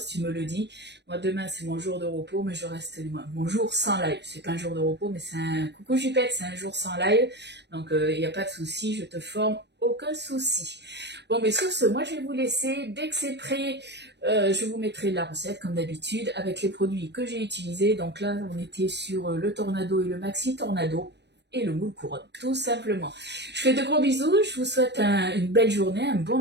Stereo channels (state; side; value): late; left; 0.50 ms